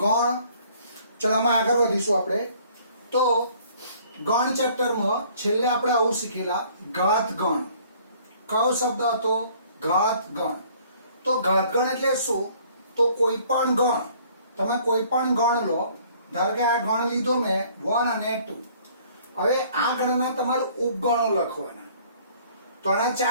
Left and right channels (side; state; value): both; inverted; correlation -0.57